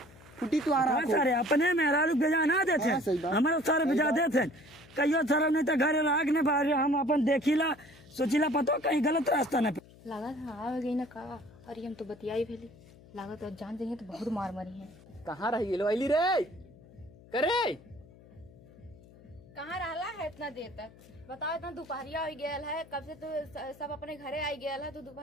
फुटी तू आ रहा हाँ, सारे अपने मेहरारू भेजा ना देते हाँ, सही बात। हमारे सारे भेजा देते कहियो सारा नहीं तो घरे राग ने बाहर हम अपन देखिला सोचिला पतो कहीं गलत रास्ता न लागत हाँ आ गई ना का अरे हम तो बतियाई भेली लागत और जान जाइए तो बहुत मार मरी है कहाँ रही गेलो अली रे करे कहाँ रहला है इतना देर तक बताओ इतना दोपहरिया हो गया है कब से तो सब अपने घरे आई गया है तो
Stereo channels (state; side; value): noise; left; hum, 23 dB below the sound